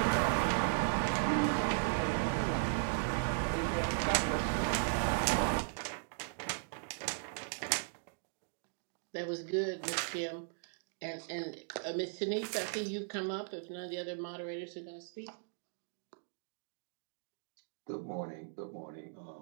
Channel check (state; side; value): silent; left; digital silence